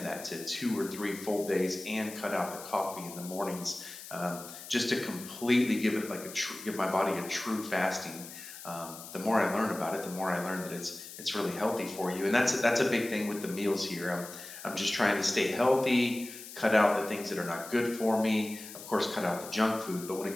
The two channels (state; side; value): noise; left; hiss, 13 dB below the sound